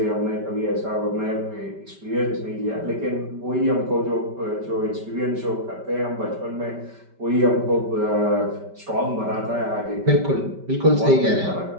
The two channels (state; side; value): late; left; 5.1 ms